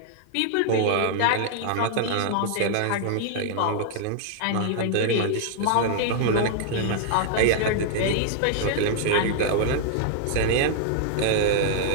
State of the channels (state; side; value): different; both; correlation -0.01